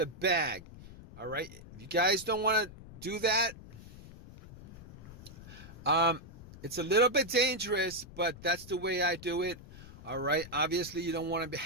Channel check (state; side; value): noise; left; rumble, 16 dB below the sound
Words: bag. All right. If you guys don't want to do that, it's a little bit dangerous, but that's the way I do it. All right. Obviously, you don't want to